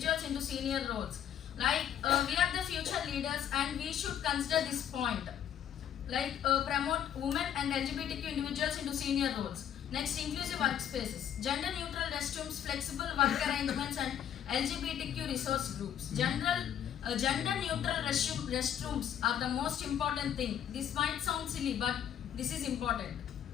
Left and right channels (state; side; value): quieter; right; 9.7 dB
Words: into senior roles. Like we are the future leaders and we should consider this point. Like promote women and LGBTQ individuals into senior roles. Next, inclusive workspaces, gender neutral restrooms, flexible work arrangements and LGBTQ resource groups. Gender neutral restrooms are the most important thing. This might sound silly but this is important.